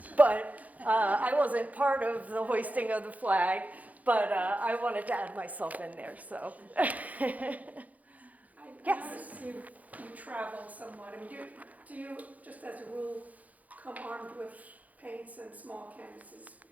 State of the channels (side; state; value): left; late; 0.076 ms